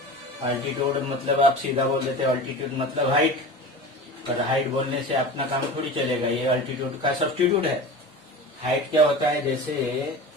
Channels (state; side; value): normal; both; correlation 0.33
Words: अल्टीट्यूड मतलब आप सीधा बोल देते हैं अल्टीट्यूड मतलब हाइट, पर हाइट बोलने से अपना काम थोड़ी चलेगा. ये अल्टीट्यूड का सब्स्टिट्यूट है. हाइट क्या होता है? जैसे